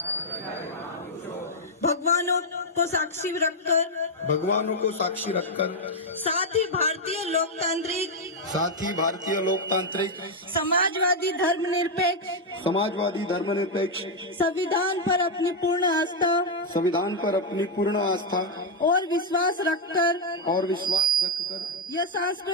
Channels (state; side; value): normal; both; correlation 0.00